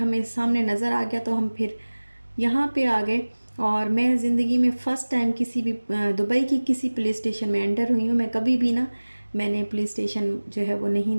सामने नज़र आ गया, तो हम फिर यहाँ पे आ गए। और मैं ज़िंदगी में फ़र्स्ट टाइम किसी भी दुबई की किसी पुलिस स्टेशन में एंटर हुई हूँ। मैं कभी भी ना, मैंने पुलिस स्टेशन जो है वो नहीं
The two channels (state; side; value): inverted; both; correlation -1.00